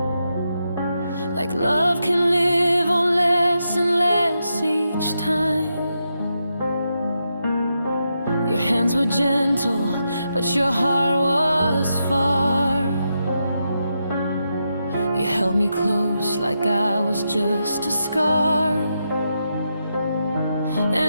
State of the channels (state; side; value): inverted; both; correlation -0.85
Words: like love can live on less and less each time. Your hands were gentle, but your heart was far. You held me close like I was just a scar.